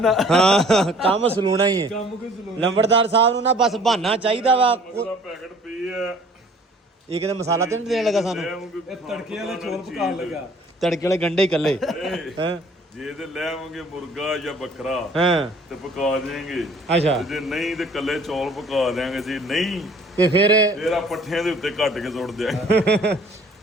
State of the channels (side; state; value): both; normal; correlation 0.53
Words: ਹਾਂ ਕੰਮ ਸਲੂਣਾ ਹੀ ਹੈ। ਕੰਮ ਕੋਈ ਸਲੂਣਾ। ਲੰਬੜਦਾਰ ਸਾਹਿਬ ਨੂੰ ਨਾ ਬਸ ਬਹਾਨਾ ਚਾਹੀਦਾ ਵਾ। ਉਹਦਾ ਪੈਕਟ ਪਈ ਆ। ਇਹ ਕਿਤੇ ਮਸਾਲਾ ਤੇ ਨਹੀਂ ਦੇਣ ਲੱਗਾ ਸਾਨੂੰ? ਇਹ ਤੜਕੇ ਵਾਲੇ ਚੌਲ ਪਕਾਉਣ ਲੱਗਾ। ਤੜਕੇ ਵਾਲੇ ਗੰਡੇ ਇਕੱਲੇ ਹੈਂ ਜੇ ਤੇ ਲੈ ਆਵਾਂਗੇ ਮੁਰਗਾ ਜਾਂ ਬੱਕਰਾ ਹਾਂ ਤੇ ਪਕਾ ਦੇਵਾਂਗੇ। ਅੱਛਾ ਜੇ ਨਹੀਂ ਤੇ ਕੱਲੇ ਚੌਲ ਪਕਾ ਦੇਵਾਂਗੇ। ਜੇ ਨਹੀਂ ਤੇ ਫਿਰ ਆ ਪੱਠਿਆਂ ਦੇ ਉੱਤੇ ਕੱਟ ਕੇ ਸੁੱਟ ਦਿਆਂਗੇ।